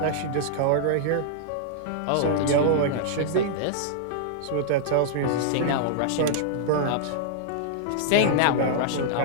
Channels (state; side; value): different; both; correlation -0.01